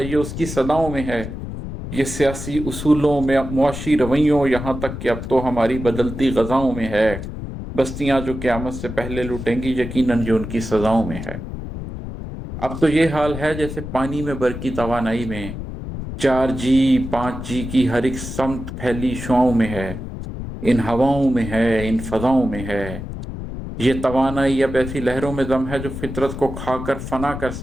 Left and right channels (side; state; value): left; noise; rumble, 8 dB below the sound